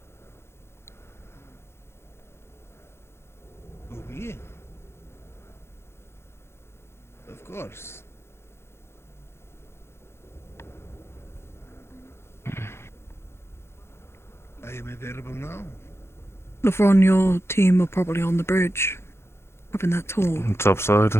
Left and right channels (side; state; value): right; late; 0.12 ms